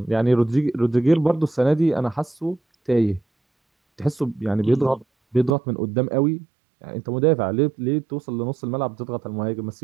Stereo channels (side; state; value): left; drops out; at 5.6 s